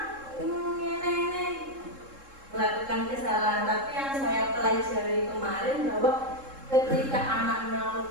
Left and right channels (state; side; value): late; left; 3.7 ms